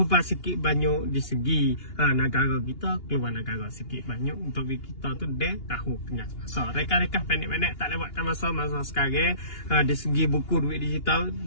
sikit banyak di segi negara kita, keluar negara sikit banyak untuk kita tu dia tahu tengah masa. Reka-reka pendek-pendek tak lewatkan masa sekarang. Di segi buku duit digital,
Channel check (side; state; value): right; late; 2.8 ms